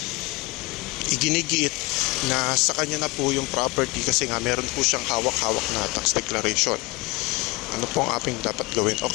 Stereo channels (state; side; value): quieter; right; 23.3 dB